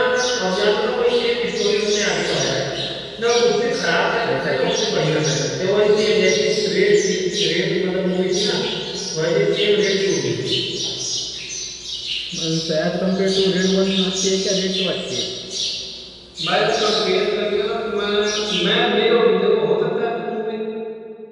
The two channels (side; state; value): both; identical; correlation 1.00